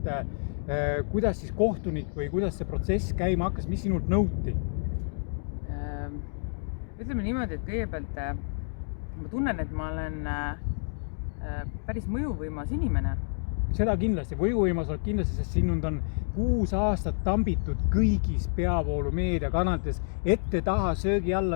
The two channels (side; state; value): right; silent; digital silence